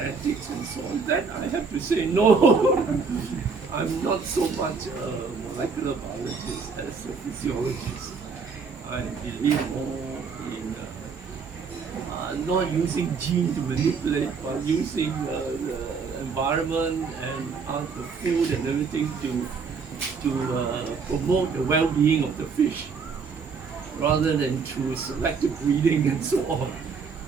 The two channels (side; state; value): left; quieter; 5.2 dB